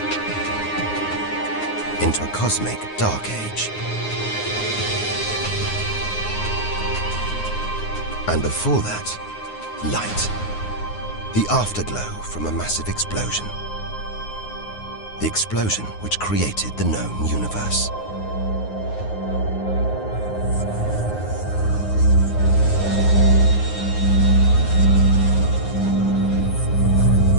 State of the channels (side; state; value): right; late; 9.6 ms